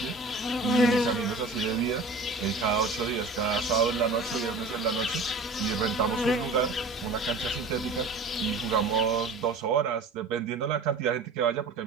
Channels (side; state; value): left; quieter; 3.5 dB